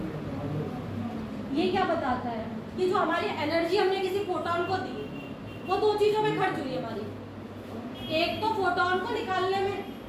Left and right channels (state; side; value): identical; both; correlation 1.00